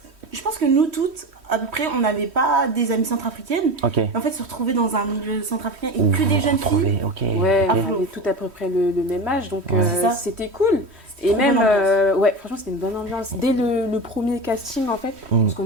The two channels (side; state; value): left; late; 3.1 ms